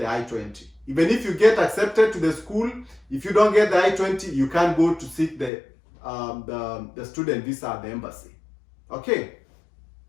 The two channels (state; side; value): drops out; right; at 5.5 s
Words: I-20. Even if you get accepted to the school, if you don't get the I-20, you can't go to seek the student visa at the embassy. Okay.